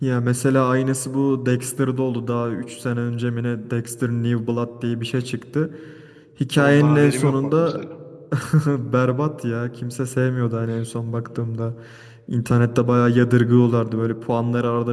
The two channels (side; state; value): both; identical; correlation 1.00